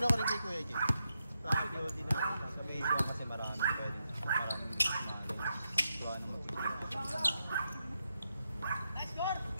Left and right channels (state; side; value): inverted; both; correlation -0.84